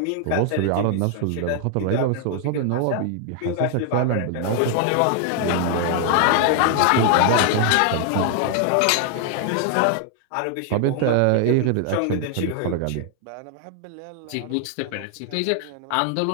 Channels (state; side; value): different; both; correlation 0.00